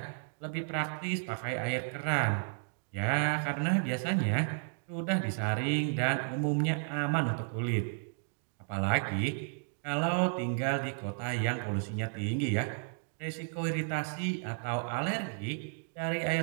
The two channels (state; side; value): silent; left; 56 dB below the other